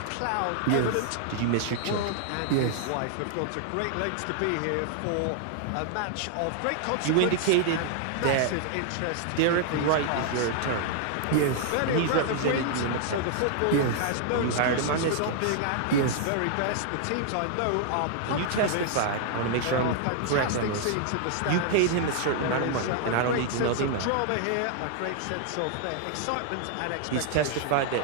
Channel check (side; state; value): both; different; correlation -0.01